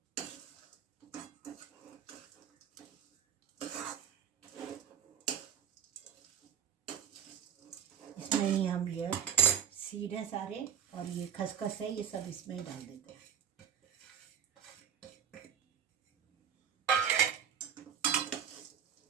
इसमें ही हम ये सीड है सारे और ये खसखस है, ये सब इसमें ही डाल देते हैं।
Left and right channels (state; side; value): quieter; left; 8.5 dB